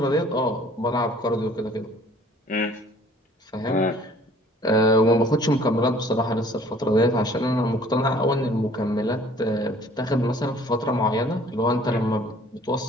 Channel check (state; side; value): normal; both; correlation 0.54